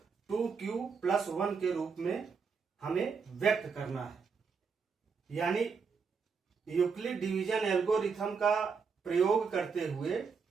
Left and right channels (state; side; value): quieter; left; 5.5 dB